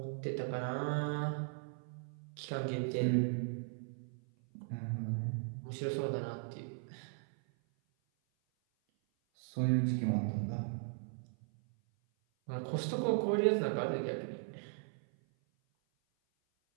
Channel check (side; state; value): left; silent; 53 dB below the other